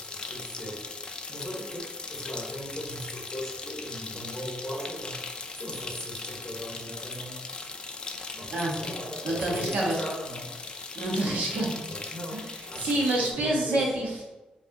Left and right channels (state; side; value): normal; both; correlation 0.61